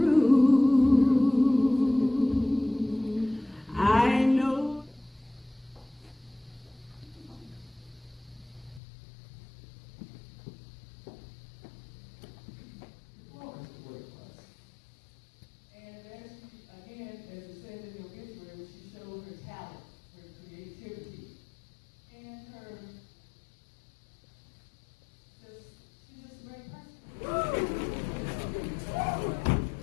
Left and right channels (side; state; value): right; drops out; at 8.8 s